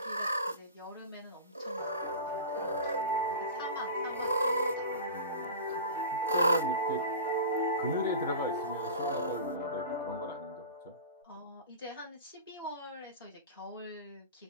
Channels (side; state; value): both; inverted; correlation -0.32